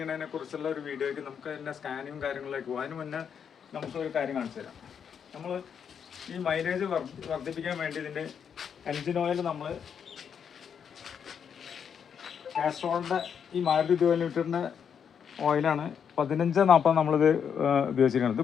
കുറിച്ചുള്ള ഒരു വീഡിയോയ്ക്ക് നമുക്ക് അതിൻ്റെ സ്കാനിങ്ങും കാര്യങ്ങളിലേക്ക് പോകും. അതിന് മുന്നേ നമുക്കൊരു കാര്യം കാണിച്ചു തരാം. നമ്മൾ ഈ മൈലേജ് വർദ്ധിപ്പിക്കാൻ വേണ്ടി ഇതിൻ്റെ എൻജിൻ ഓയിൽ നമ്മൾ കാസ്ട്രോളിൻ്റെ ഈ മാരുതി 2 ലിറ്ററിൻ്റെ ഓയിലാണ് 1540 നമ്മളിത് ഉപയോഗിച്ചിരിക്കുന്നത്.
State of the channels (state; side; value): quieter; right; 7.5 dB